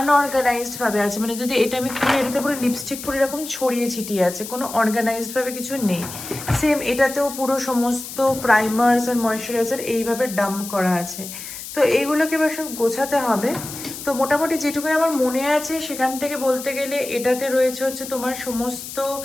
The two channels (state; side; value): noise; left; hiss, 10 dB below the sound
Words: ভাবে আছে। মানে যদি এটা আমি খুলে, এটাতে পুরো লিপস্টিক পুরো এরকম ছড়িয়ে ছিটিয়ে আছে, কোনো অর্গানাইজড ভাবে কিছু নেই। সেম এটাতেও পুরো সমস্ত প্রাইমার্স আর ময়শ্চারাইজার এইভাবে ডাম্প করা আছে। তো এইগুলোকে এবার সব গোছাতে হবে। তো মোটামুটি যেটুকু আমার মনে আছে সেখান থেকে বলতে গেলে এটাতে রয়েছে হচ্ছে তোমার সমস্ত